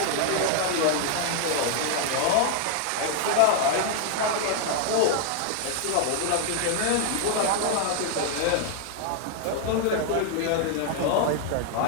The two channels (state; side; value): different; both; correlation 0.00